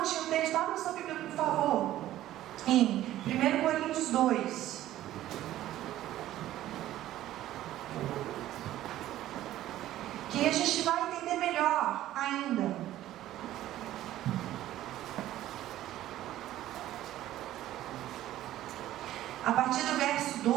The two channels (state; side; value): quieter; left; 13.8 dB